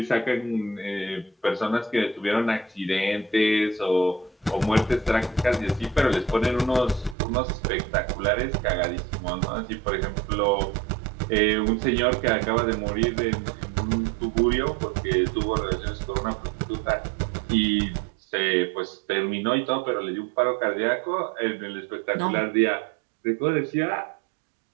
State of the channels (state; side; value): drops out; left; at 7.2 s